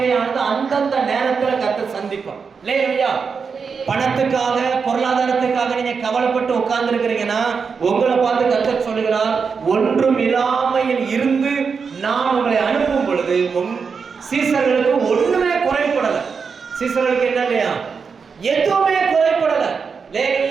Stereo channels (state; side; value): quieter; left; 5.6 dB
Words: அந்தந்த நேரத்துல கர்த்தர் சந்திப்போம். இல்லையா? பணத்துக்காக பொருளாதாரத்துக்காக நீங்க கவலைப்பட்டு உட்கார்ந்து இருக்கிறீங்கன்னா உங்களை பார்த்து கர்த்தர் சொல்லுகிறார், ஒன்றும் இல்லாமையில் இருந்து நான் உங்களை அனுப்பும் பொழுது சீசர்களுக்கு ஒண்ணுமே குறைபடல. சீசர்களுக்கு என்ன இல்லையா, எதுவுமே குறைபடல.